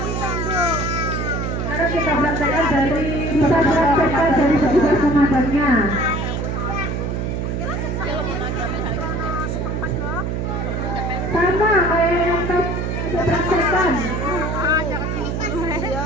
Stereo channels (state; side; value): noise; right; hum, 1 dB below the sound